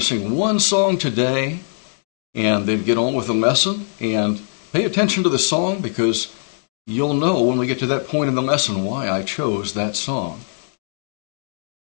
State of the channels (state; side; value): silent; right; digital silence